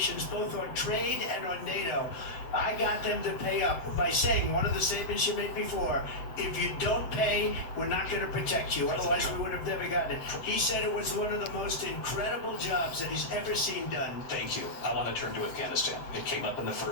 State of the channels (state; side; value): late; right; 7.9 ms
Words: both on trade and on NATO. I got them to pay up by saying, one of the statements you made before, if you don't pay, we're not going to protect you. Otherwise, we would have never gotten it. He said it was one of the most incredible jobs that he's ever seen done. Thank you. I want to turn to Afghanistan. It came up in the